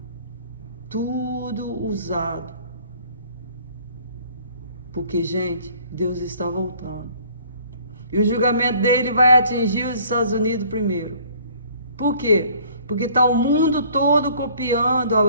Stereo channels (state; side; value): inverted; both; correlation -0.55